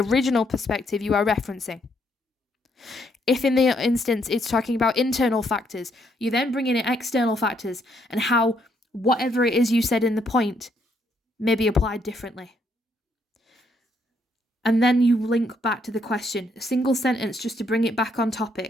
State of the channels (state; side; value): normal; both; correlation 0.72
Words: perspective you are referencing. If in the instance it's talking about internal factors, you then bring in external factors and how whatever it is you said in the point may be applied differently. And then you link back to the question, a single sentence just to bring it back on